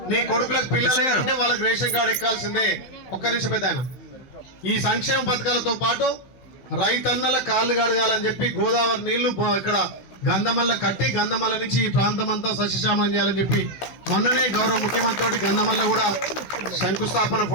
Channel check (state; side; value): late; right; 15 ms